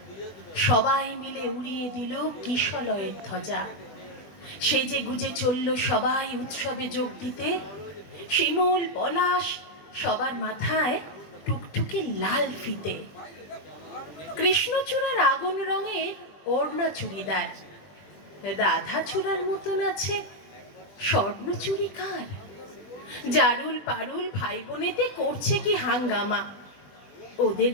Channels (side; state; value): right; late; 20 ms